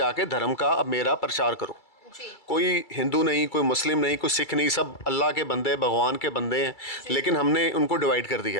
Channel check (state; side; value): late; right; 2.3 ms